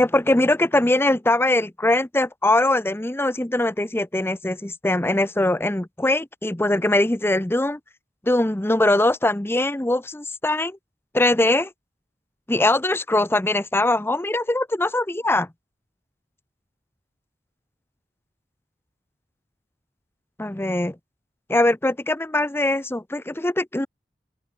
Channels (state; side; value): normal; both; correlation 0.75